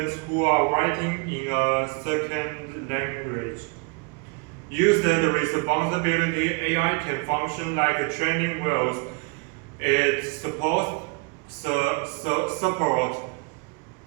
who are writing in a second language. Used with responsibility, AI can function like a training wheels. It supports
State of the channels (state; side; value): quieter; left; 31.5 dB